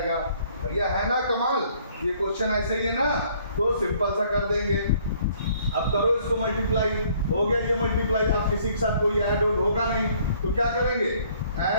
भैया है ना कमाल, ये क्वेश्चन ऐसे ही है ना, तो सिंपल सा कर देंगे। अब करो इसको मल्टीप्लाई, हो गया ये मल्टीप्लाई। अब किसी के साथ कोई ऐड ऑड होगा नहीं, तो क्या करेंगे,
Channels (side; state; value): both; inverted; correlation -0.61